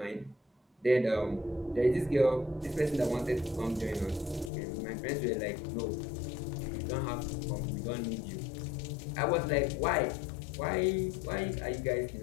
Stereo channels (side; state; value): right; drops out; at 4.5 s